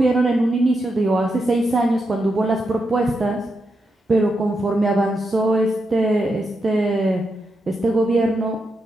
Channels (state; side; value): normal; both; correlation 0.85